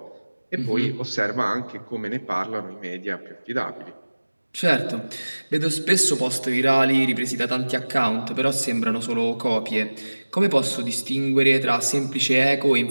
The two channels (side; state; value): both; inverted; correlation -1.00